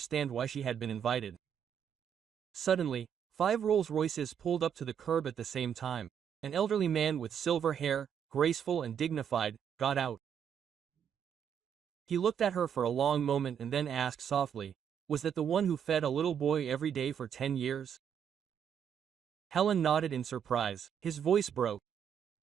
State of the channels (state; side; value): quieter; left; 8.3 dB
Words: why she had been invited. Suddenly, 5 Rolls-Royces pulled up to the curb at the same time. An elderly man with silver hair, graceful and dignified, got out. He looked at her for a long moment and then asked softly, "Was that the one who fed a little boy every day for 10 years?" Helen nodded in surprise. His voice broke.